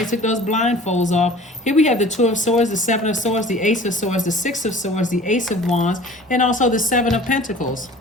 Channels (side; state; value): both; normal; correlation 0.45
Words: took those blindfolds off. Here we have the 2 of Swords, the 7 of Swords, the Ace of Swords, the 6 of Swords, the Ace of Wands, and also the 7 of Pentacles.